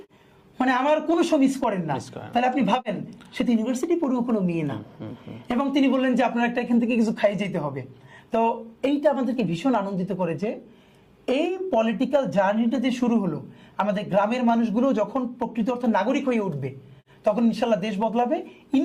মানে আমার কোনো শো মিস করেন না। তাহলে আপনি ভাবেন সে তো ইউনিভার্সিটি পড়ুও কোনো মেয়ে না। এবং তিনি বললেন যে আপনার একটা এখান থেকে কিছু খাই যেতে হবে। তো এইটা আমাদেরকে ভীষণ আনন্দিত করে যে এই পলিটিক্যাল জার্নিটা যে শুরু হলো, আমাদের গ্রামের মানুষগুলো যখন প্রকৃত অর্থে নাগরিক হয়ে উঠবে তখন ইনশাল্লাহ দেশ বদলাবে।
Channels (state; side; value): identical; both; correlation 1.00